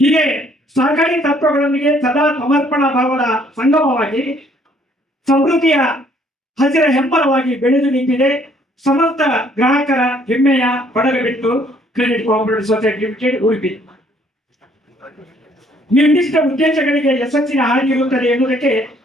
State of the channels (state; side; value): normal; both; correlation 0.63